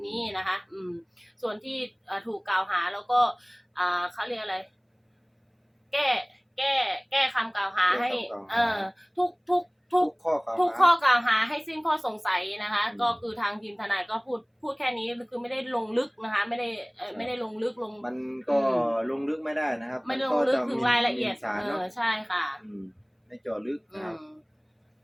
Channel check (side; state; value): both; identical; correlation 1.00